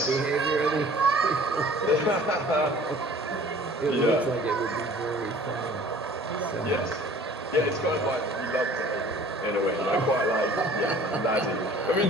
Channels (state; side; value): normal; both; correlation 0.49